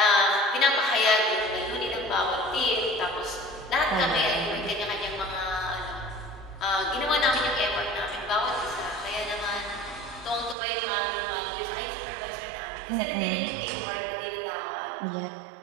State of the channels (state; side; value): drops out; left; at 10.6 s